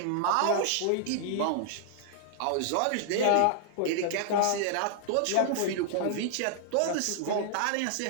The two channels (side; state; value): both; different; correlation 0.00